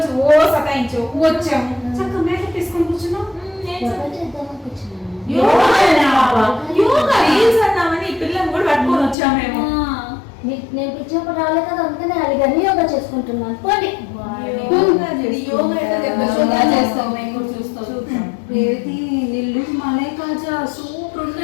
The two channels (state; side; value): drops out; right; at 9.2 s